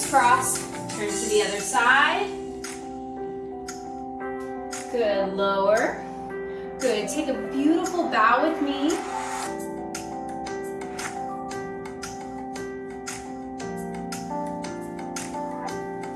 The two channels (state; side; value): identical; both; correlation 1.00